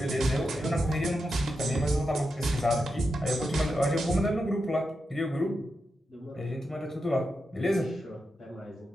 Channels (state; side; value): normal; both; correlation 0.87